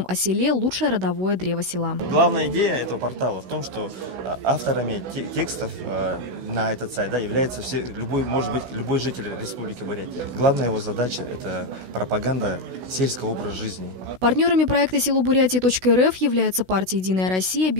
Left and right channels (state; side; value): late; left; 16 ms